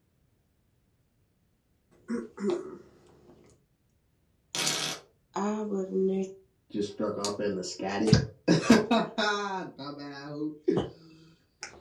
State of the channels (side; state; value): both; identical; correlation 1.00